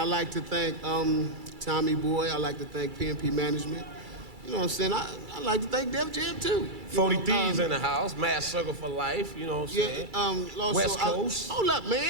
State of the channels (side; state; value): left; late; 2.3 ms